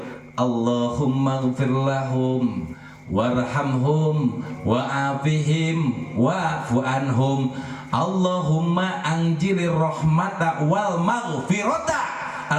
Allahumma ighfir lahum warhamhum wa'afihim wa'fu anhum Allahumma anjilir rahmata wal maghfirata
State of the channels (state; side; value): identical; both; correlation 1.00